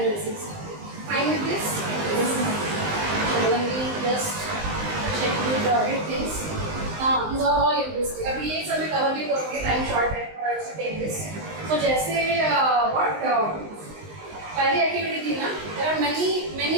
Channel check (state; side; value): late; left; 19 ms